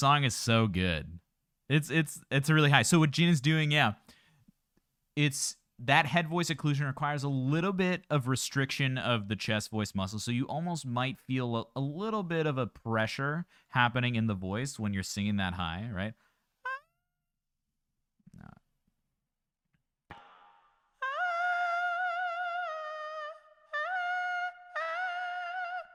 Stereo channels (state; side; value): identical; both; correlation 1.00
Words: is so good. It's really high. So what Jin doing, yeah, it's that head voice occlusion requires a little bit of restriction of the chest voice muscle. So you almost might feel a little bit of a pressure happening in the voice when you're singing that high, right?